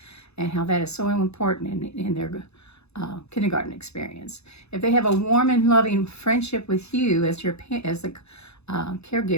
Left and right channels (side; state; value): right; late; 0.80 ms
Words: and how that is so important in their kindergarten experience. If they have a warm and loving friendship with you as the